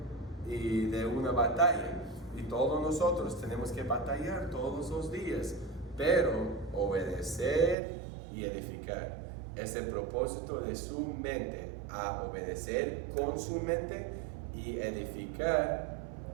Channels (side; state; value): left; drops out; at 7.8 s